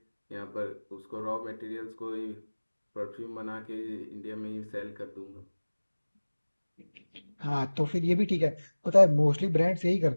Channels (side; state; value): both; inverted; correlation -1.00